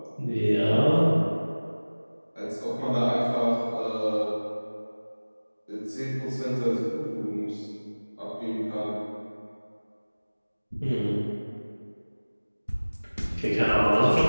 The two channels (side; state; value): both; inverted; correlation -1.00